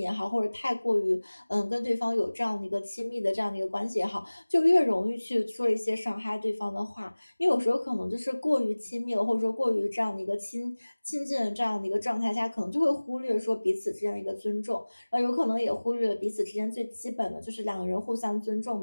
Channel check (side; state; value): both; inverted; correlation -1.00